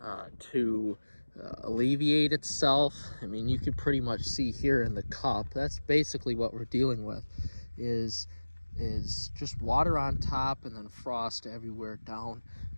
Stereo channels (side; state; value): both; inverted; correlation -1.00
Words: to alleviate itself. You can pretty much see here in the cup, that's basically what we're dealing with, is just water on top and then frost everywhere down